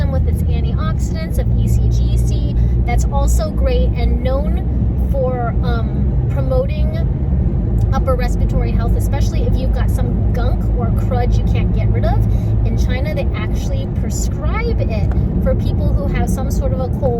with its antioxidants of ECGC. That's also great and known for promoting upper respiratory health, especially if you've got some gunk or crud you can't get rid of. In China, they actually prescribe it for people who have some sort of a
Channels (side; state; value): both; identical; correlation 1.00